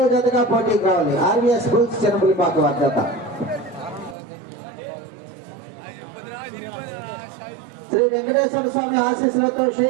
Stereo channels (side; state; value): left; drops out; at 4.2 s